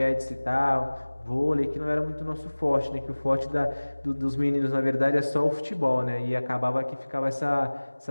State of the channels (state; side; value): inverted; both; correlation -1.00